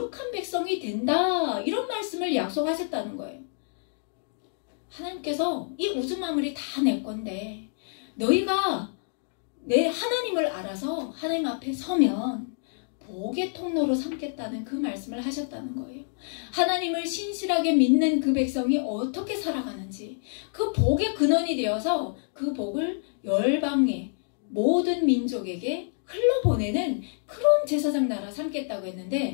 백성이 된다. 이런 말씀을 약속하셨다는 거예요. 하나님께서 이 우주 만물이 다 내 건데 너희가 내 하나님을 알아서 하나님 앞에 서면 복의 통로로 삼겠다는 그 말씀을 하셨다는 거예요. 하나님을 신실하게 믿는 그 백성이 어떻게 살아가는지 그 복의 근원이 되어서 그 복을 열방의 모든 민족에게 흘러보내는 그런 제사장 나라 삼겠다고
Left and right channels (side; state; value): right; silent; digital silence